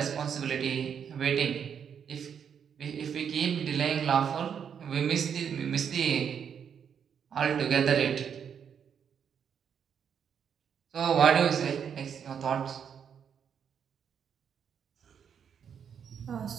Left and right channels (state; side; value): quieter; left; 7.7 dB